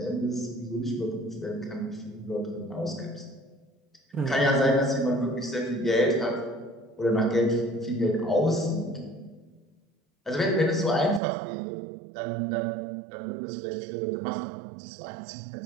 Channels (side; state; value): left; drops out; at 11.2 s